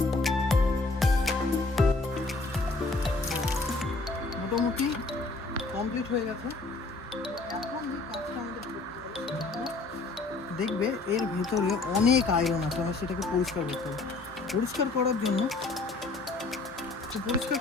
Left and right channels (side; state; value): right; quieter; 3.4 dB